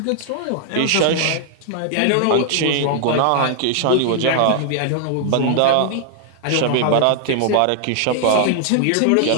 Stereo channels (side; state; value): both; different; correlation -0.01